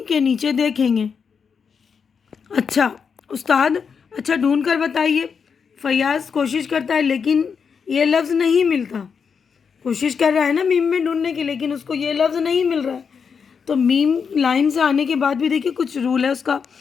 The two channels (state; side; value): quieter; right; 6.2 dB